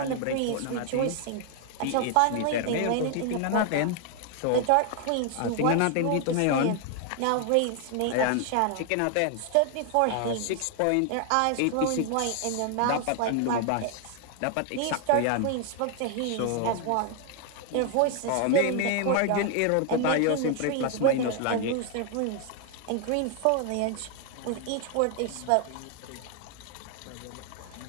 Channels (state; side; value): different; both; correlation 0.00